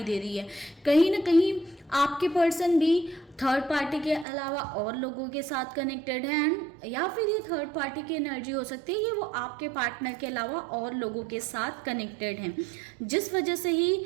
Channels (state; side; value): drops out; left; at 4.2 s